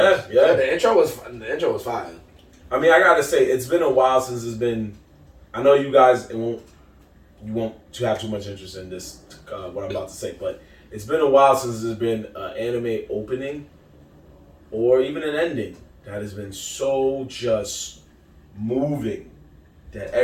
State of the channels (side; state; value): both; identical; correlation 1.00